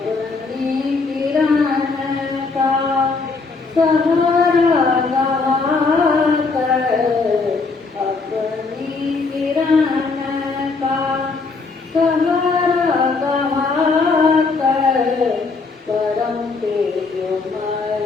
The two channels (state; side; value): quieter; right; 4.2 dB